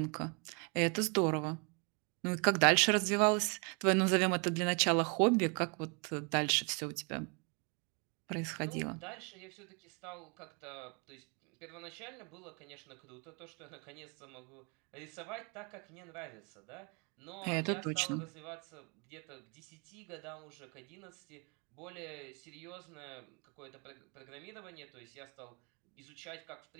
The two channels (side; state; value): left; quieter; 34.3 dB